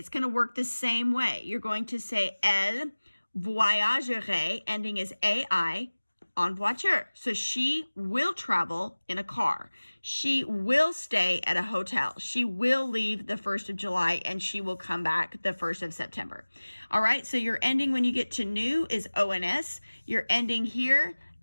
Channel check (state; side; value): inverted; both; correlation -1.00